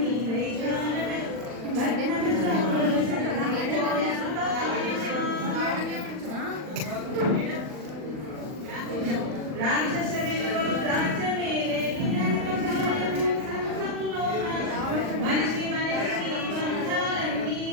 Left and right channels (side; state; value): left; late; 39 ms